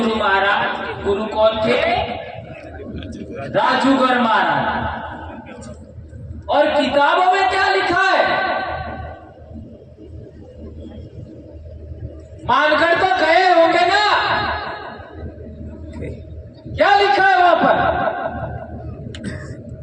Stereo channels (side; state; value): both; identical; correlation 1.00